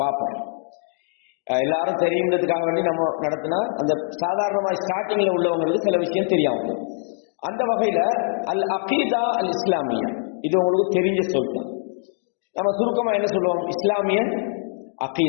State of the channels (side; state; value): right; silent; 63 dB below the other